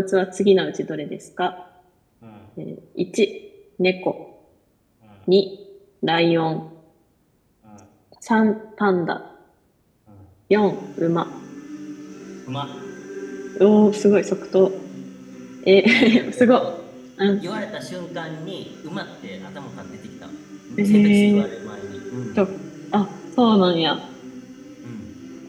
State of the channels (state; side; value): identical; both; correlation 1.00